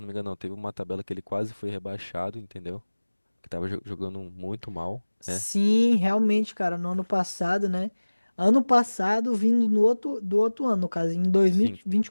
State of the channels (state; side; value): inverted; both; correlation -1.00